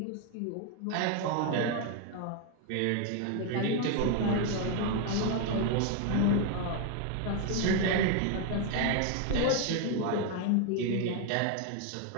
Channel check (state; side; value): different; both; correlation 0.01